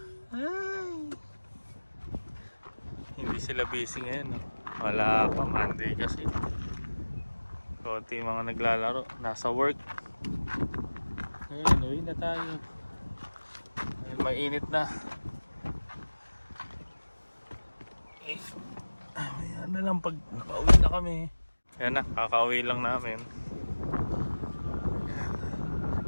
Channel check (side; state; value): both; inverted; correlation -1.00